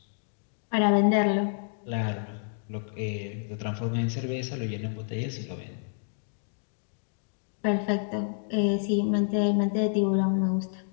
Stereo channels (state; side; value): silent; right; digital silence